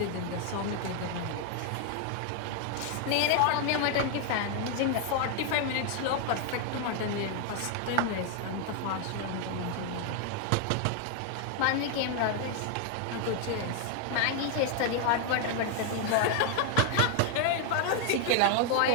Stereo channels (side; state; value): both; different; correlation 0.00